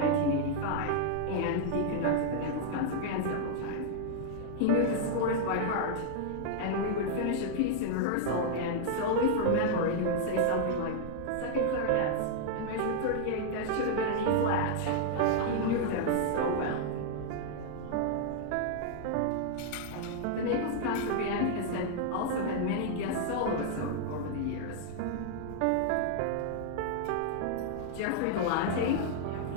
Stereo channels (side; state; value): both; different; correlation -0.01